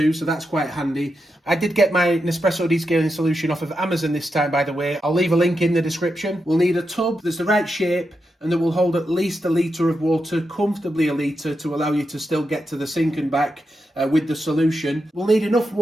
so that's quite handy. I did get my Nespresso descaling solution off of Amazon this time, by the way. I'll leave a link in the description. We'll need a tub that's the right shape and that will hold at least 1 litre of water, comfortably 1 litre, to allow you to still get to the sink and back with the solution. We'll need enough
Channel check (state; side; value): normal; both; correlation 0.87